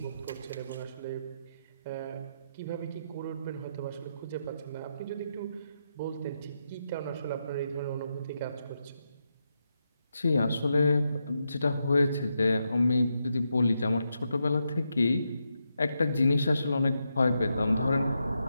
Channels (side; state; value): both; inverted; correlation -0.84